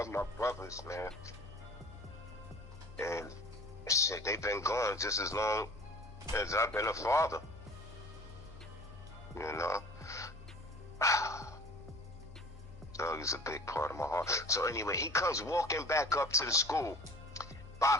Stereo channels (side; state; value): both; normal; correlation 0.44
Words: my brothers, man. And shit, they've been gone just as long as I've been a father. You know? Doug is a big part of my heart. So anyway, he comes walking back up to the school,